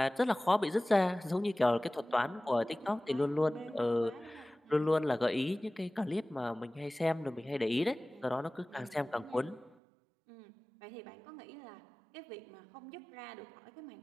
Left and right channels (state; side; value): drops out; left; at 9.8 s